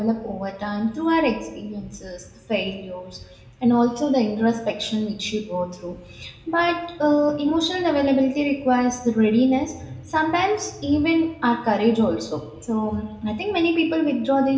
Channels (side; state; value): both; identical; correlation 1.00